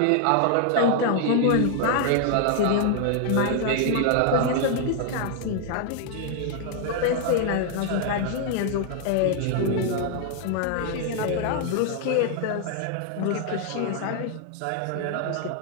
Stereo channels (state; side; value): different; both; correlation 0.00